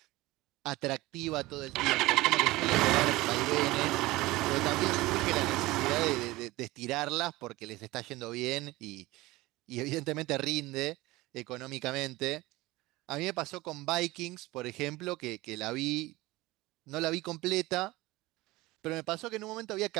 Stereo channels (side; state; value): left; quieter; 19.5 dB